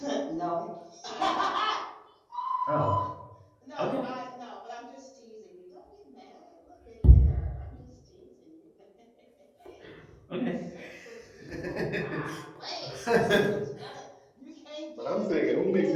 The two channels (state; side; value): identical; both; correlation 1.00